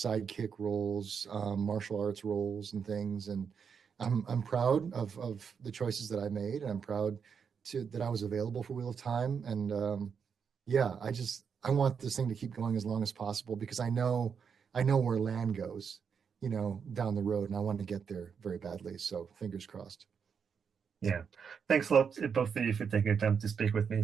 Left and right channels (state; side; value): quieter; left; 6.6 dB